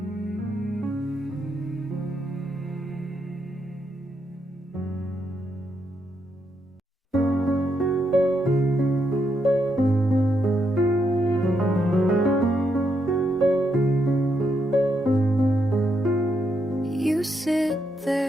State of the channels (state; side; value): normal; both; correlation 0.79